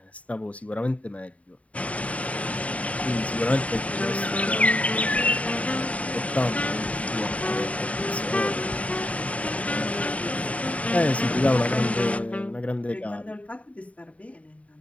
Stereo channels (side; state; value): right; late; 0.067 ms